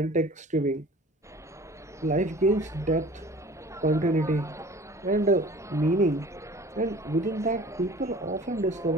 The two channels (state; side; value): normal; both; correlation 0.45